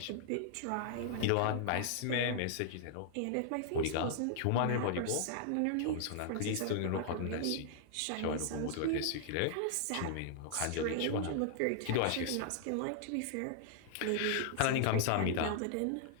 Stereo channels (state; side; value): different; both; correlation -0.01